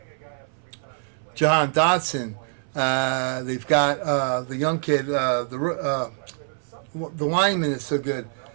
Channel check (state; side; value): silent; left; 62 dB below the other